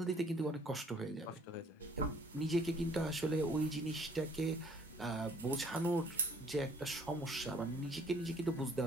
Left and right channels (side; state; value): both; normal; correlation 0.59